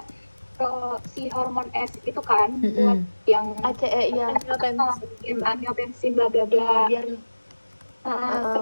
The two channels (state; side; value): inverted; both; correlation -1.00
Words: si hormon S itu kan buat yang ACE ya. angiotensin bla bla bla. Biar